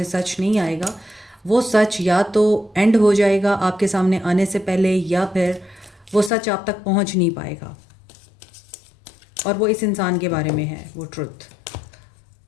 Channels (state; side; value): drops out; right; at 6.3 s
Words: सच नहीं आएगा। वो सच या तो एंड हो जाएगा आपके सामने आने से पहले, या फिर वो सच आप तक पहुँच नहीं पाएगा। और वो इस इंसान के बारे में है, वो ट्रुथ।